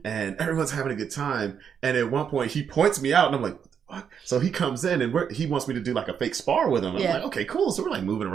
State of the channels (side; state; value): left; quieter; 7.5 dB